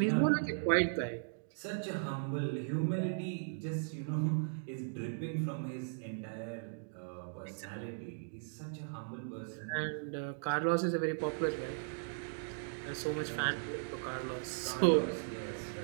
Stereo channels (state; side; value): silent; left; digital silence